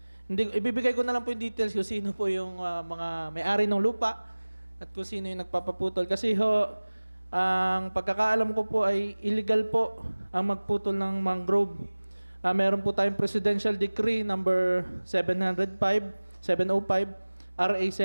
hindi, ibibigay ko na lang po yung details kung sino po yung mga may-ari ng lupa at kung sino yung nagpapaputol kasi ho ang pagkakaalam ko po ay illegal po ang magputol ng mangrove. Meron po tayong Presidential Decree number 705, RA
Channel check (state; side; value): inverted; both; correlation -1.00